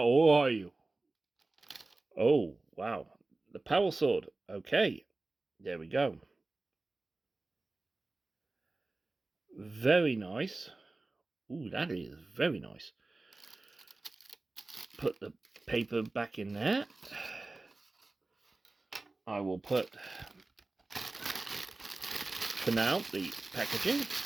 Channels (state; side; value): quieter; left; 3.2 dB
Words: Who are you? Oh, wow. The power sword. Okay, there we go. Very nice. Ooh, that is very nice. Put the paper back in there. I will put, for now, the packaging